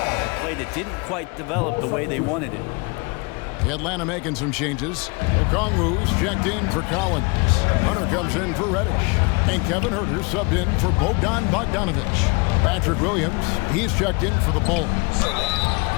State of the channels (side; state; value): right; quieter; 30.3 dB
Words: play that didn't quite develop the way they wanted it. Atlanta making some changes. Okongwu's checked in for Collins. Hunter comes in for Reddish. And Kevin Huerter subbed in for Bogdanovich. Patrick Williams, he's checked in for the Bulls.